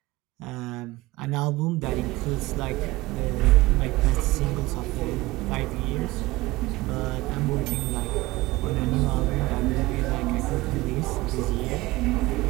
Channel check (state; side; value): quieter; left; 19.7 dB